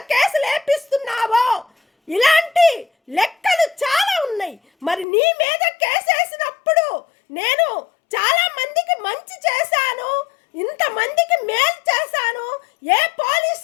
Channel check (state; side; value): drops out; right; at 5.1 s